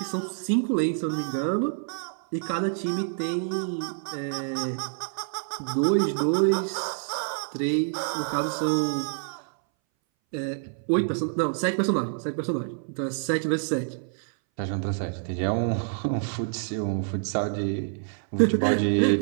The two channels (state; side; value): silent; left; 60 dB below the other